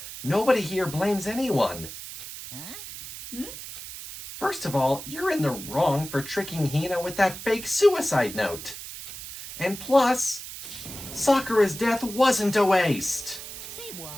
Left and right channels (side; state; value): right; noise; hiss, 11 dB below the sound